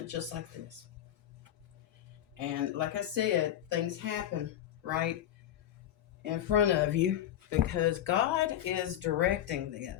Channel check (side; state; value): right; quieter; 11.6 dB